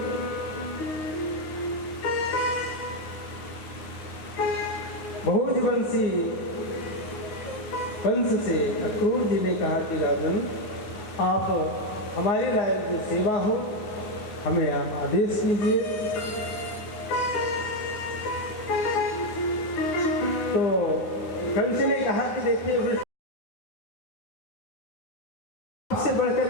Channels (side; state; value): right; late; 9.5 ms